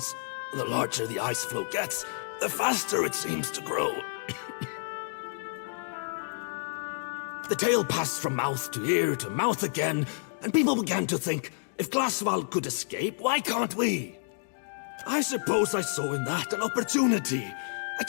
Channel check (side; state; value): right; silent; digital silence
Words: the larger the ice floe gets, the faster it seems to grow. The tale passed from mouth to ear to mouth again, and people began to think, if Glasval could escape, why can't we? I suppose I saw in that an opportunity, a